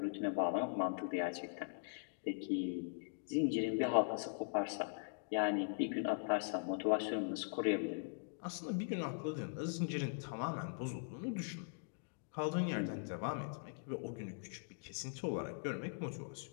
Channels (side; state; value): right; silent; digital silence